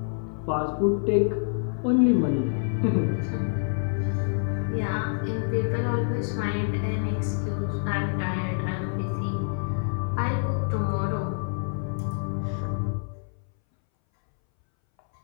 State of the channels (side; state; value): right; silent; 60 dB below the other